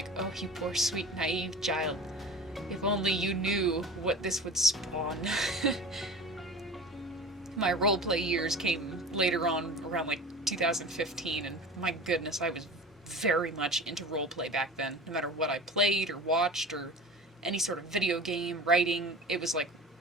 oh, you poor sweet naive child. If only you knew what this would spawn. My roleplay years came later on, around like 2015, and my goodness, I was very much into roleplay back then. No matter what I played or watched or any sort of video game, writing, it was like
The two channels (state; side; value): normal; both; correlation 0.35